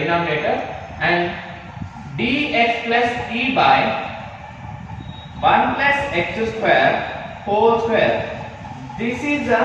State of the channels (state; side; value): identical; both; correlation 1.00